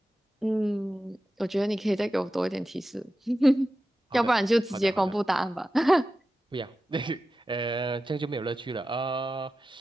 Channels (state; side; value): normal; both; correlation 0.93